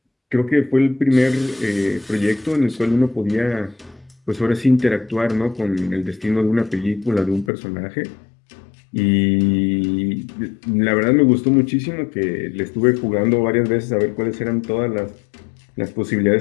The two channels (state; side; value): drops out; right; at 7.5 s